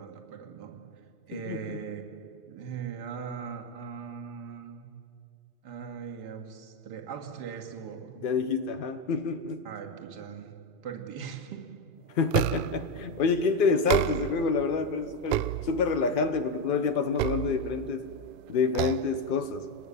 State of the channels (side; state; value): right; late; 2.5 ms